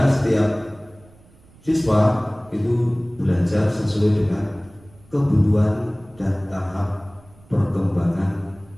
setiap siswa itu belajar sesuai dengan kebutuhan dan tahap perkembangan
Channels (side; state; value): right; noise; rumble, 26 dB below the sound